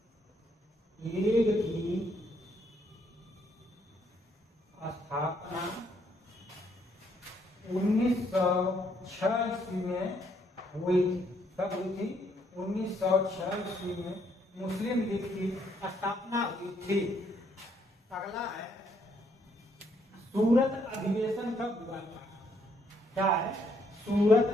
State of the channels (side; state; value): both; normal; correlation 0.71